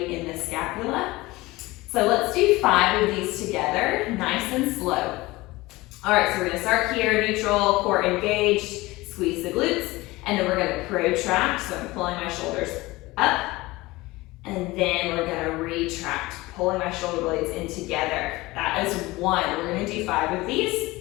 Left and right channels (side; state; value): right; quieter; 20.4 dB